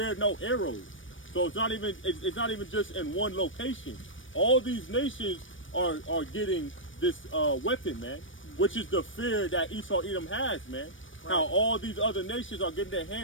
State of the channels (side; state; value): right; late; 0.56 ms